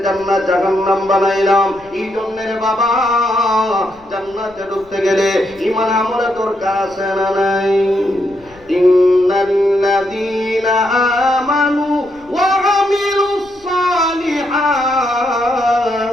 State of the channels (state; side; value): noise; left; rumble, 27 dB below the sound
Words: জান্নাত জাহান্নাম বানাইলাম। এই জন্য রে বাবা, জান্নাতে ঢুকতে গেলে ঈমান আমলে তোর কাছে না নাই। ইন্নাল্লাযীনা আমানু ওয়া আমিলুস সালিহাত